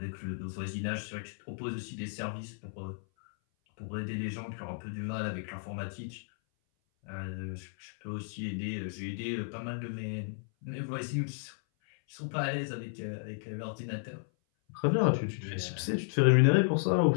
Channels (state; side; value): silent; right; 55 dB below the other